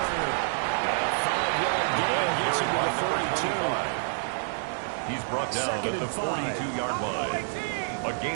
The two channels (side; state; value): left; silent; digital silence